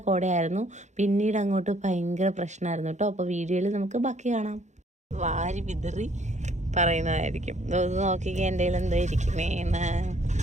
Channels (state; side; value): late; left; 0.34 ms